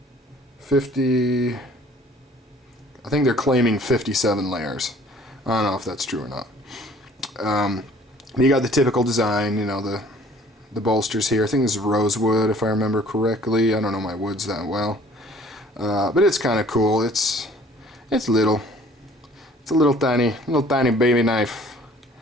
50, I think they're claiming 57 layers. I don't know if that's true or not. You got the typical design, you know, the bolsters here. I think this is rosewood, if I remember correctly. I don't know my woods that well. But it's kind of cool. It's little. It's a little tiny baby knife.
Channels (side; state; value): both; normal; correlation 0.54